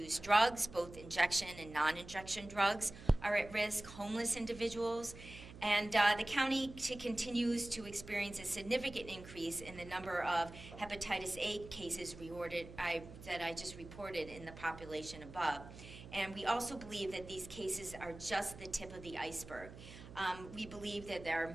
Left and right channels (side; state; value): right; noise; hum, 15 dB below the sound